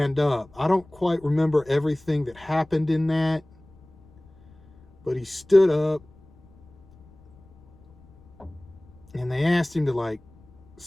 up. I don't quite remember everything that happened in that, but he stood up and they asked him to like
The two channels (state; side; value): noise; left; rumble, 27 dB below the sound